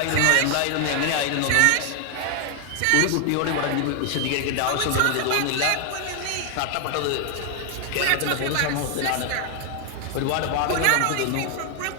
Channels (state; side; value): different; both; correlation 0.00